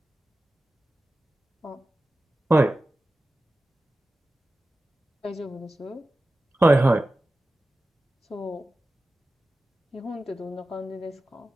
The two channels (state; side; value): normal; both; correlation 0.94